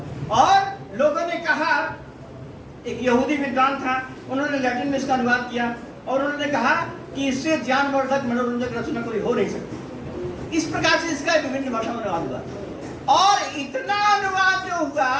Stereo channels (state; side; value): identical; both; correlation 1.00